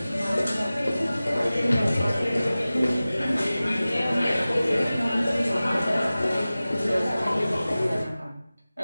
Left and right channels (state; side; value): inverted; both; correlation -0.97